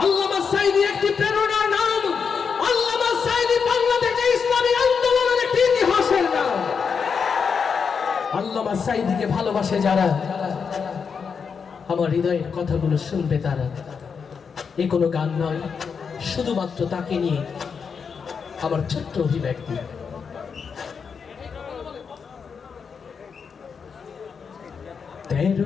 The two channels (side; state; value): right; quieter; 6.1 dB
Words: আল্লামা সাঈদী একটি প্রেরণার নাম। আল্লামা সাঈদী বাংলাদেশে ইসলামী আন্দোলনের একটি ইতিহাসের নাম। আল্লামা সাঈদীকে ভালোবাসে যারা, আমার হৃদয়ের কথাগুলো শুনবে তারা। এ কোনো গান নয়, শুধুমাত্র তাকে নিয়ে আমার ছোট্ট অভিব্যক্তি।